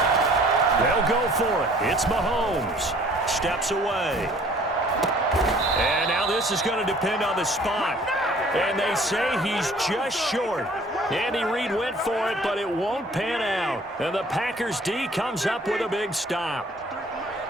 They'll go for it. It's Mahomes. Steps away. And now this is going to depend on the spot. And they say he's just short. Andy Reid went for it, but it won't pan out. And the Packers D comes up with a big stop.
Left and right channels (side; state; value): both; normal; correlation 0.54